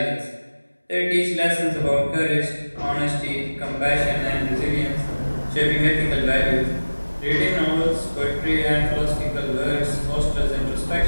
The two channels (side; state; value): both; inverted; correlation -1.00